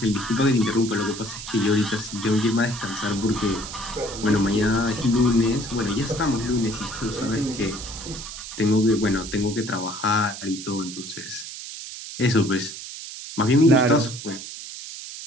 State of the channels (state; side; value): noise; right; hiss, 10 dB below the sound